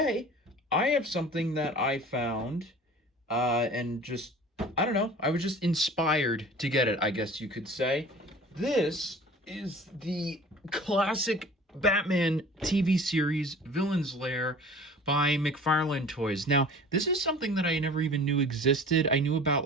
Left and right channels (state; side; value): normal; both; correlation 0.43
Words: I have something that I found, and just, I don't know, I was just inspired to get it, I guess you could say. This is the classic Batman TV series, Villain's Lair, by Mcfarlane Toys. Now, this is something that I never even knew existed. I knew about,